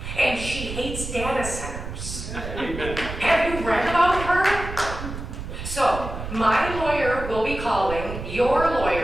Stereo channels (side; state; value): right; noise; rumble, 8 dB below the sound